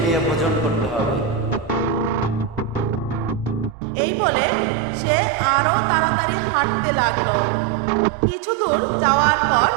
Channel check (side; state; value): left; drops out; at 3.8 s